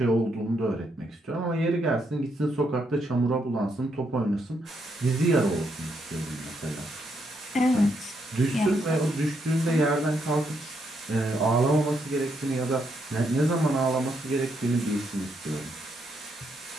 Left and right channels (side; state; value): both; normal; correlation 0.77